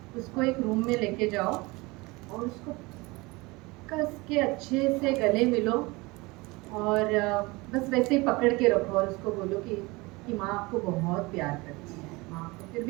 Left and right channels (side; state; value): left; quieter; 23.8 dB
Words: उसको एक रूम में लेके जाओ और उसको कस के अच्छे से गले मिलो और बस वैसे ही पकड़ के रखो और उसको बोलो कि माँ आपको बहुत प्यार करती है, माँ आपको। फिर